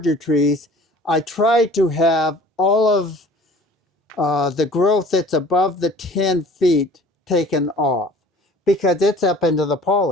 trees, I try to have all of the growth that's above the 10 feet taken off because it's up into the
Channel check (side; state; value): both; normal; correlation 0.48